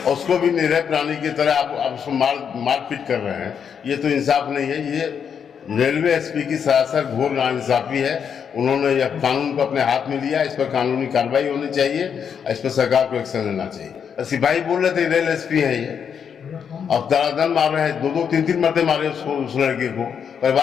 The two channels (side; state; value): right; quieter; 7.4 dB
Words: और उसको भी निरह प्राणी की तरह आप उसको मारपीट कर रहे हैं। ये तो इंसाफ नहीं है। ये रेलवे एसपी की सरासर घोर नाइंसाफी है। उन्होंने यह कानून को अपने हाथ में लिया, इस पर कानूनी कार्रवाई होनी चाहिए, इस पर सरकार को एक्शन लेना चाहिए। सिपाही बोल रहे थे रेल एसपी है ये, अब दरादन मार रहे हैं, 2-2, 3-3 मरते मारे उस लड़के को